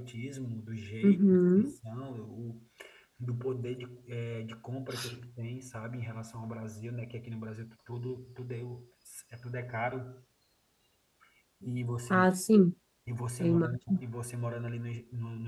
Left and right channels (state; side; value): identical; both; correlation 1.00